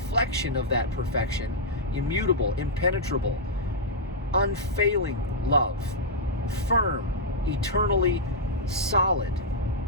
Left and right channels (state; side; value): normal; both; correlation -0.07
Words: of that perfection, immutable, impenetrable, unfailing love, firm, eternally solid,